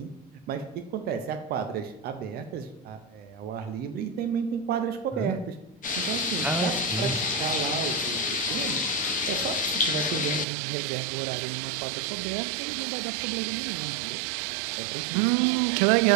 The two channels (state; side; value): drops out; left; at 10.5 s